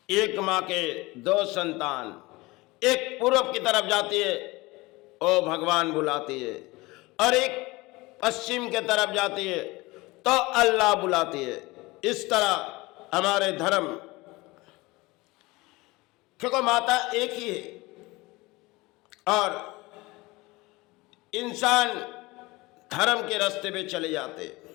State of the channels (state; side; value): quieter; right; 22.1 dB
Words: एक माँ के दो संतान, एक पूर्व की तरफ जाती है, ओ भगवान बुलाती है, और एक पश्चिम के तरफ जाती है तो अल्लाह बुलाती है। इस तरह हमारे धर्म, क्योंकि माता एक ही है और इंसान धर्म के रास्ते पे चले जाते,